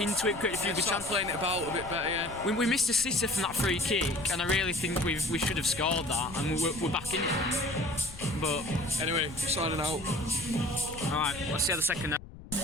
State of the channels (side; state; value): left; noise; rumble, 15 dB below the sound